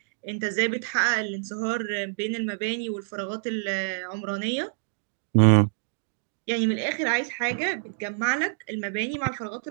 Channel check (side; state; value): left; silent; digital silence